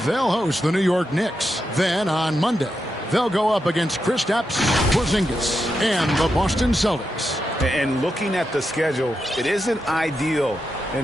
they'll host the New York Knicks. Then on Monday, they'll go up against Kristaps Porzingis and the Boston Celtics. And looking at the schedule, it isn't ideal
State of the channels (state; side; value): normal; both; correlation 0.86